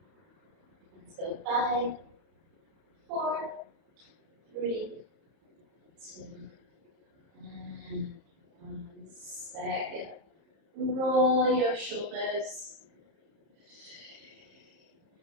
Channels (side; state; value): left; late; 30 ms